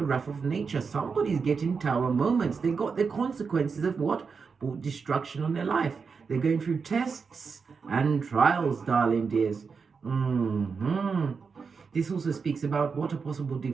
wrath of nature. Somebody's getting tower moments. They got the consequences of what? Brought destruction on their life. They're going through tests and trials, darling dears. This also speaks about what? A possible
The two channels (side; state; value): left; quieter; 5.4 dB